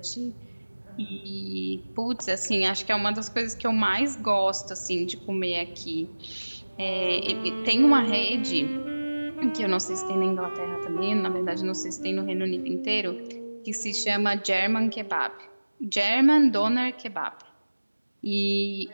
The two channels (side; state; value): both; inverted; correlation -1.00